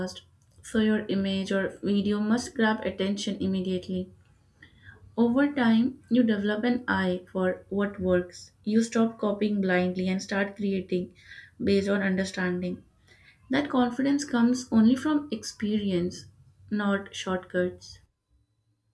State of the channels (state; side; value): identical; both; correlation 1.00